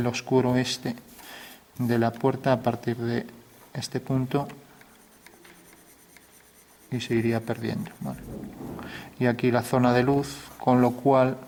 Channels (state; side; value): identical; both; correlation 1.00